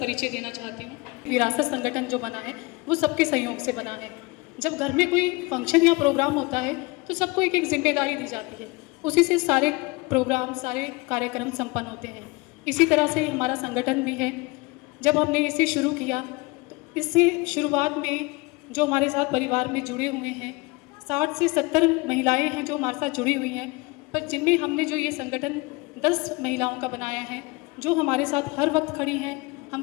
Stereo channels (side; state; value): right; quieter; 25.4 dB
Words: देना चाहती हूँ। विरासत संगठन जो बना है वो सबके सहयोग से बना है। जब घर में कोई फंक्शन या प्रोग्राम होता है तो सबको एक जिम्मेदारी दी जाती है, उसी से सारे प्रोग्राम सारे कार्यक्रम संपन्न होते हैं। इसी तरह से हमारा संगठन भी है। जब हमने इसे शुरू किया तो इससे शुरुआत में जो हमारे साथ परिवार में जुड़े हुए हैं 60 से 70 महिलाएं हैं जो हमारे साथ जुड़ी हुई हैं, पर जिनमें हमने जो ये संगठन 10 महिलाओं का बनाया है जो हमारे साथ हर वक्त खड़ी हैं। हम